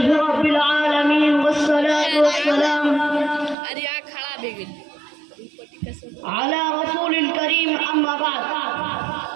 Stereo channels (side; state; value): left; drops out; at 3.6 s